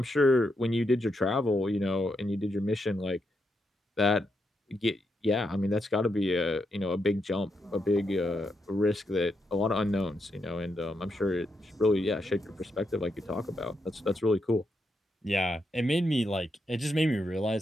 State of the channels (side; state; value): both; normal; correlation 0.82